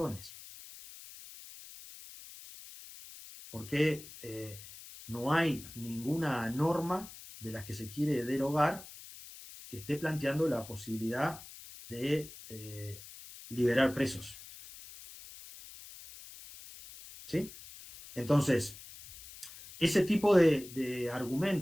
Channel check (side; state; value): left; noise; hiss, 16 dB below the sound